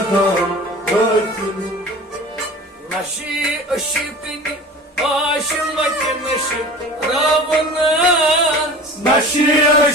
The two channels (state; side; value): normal; both; correlation 0.38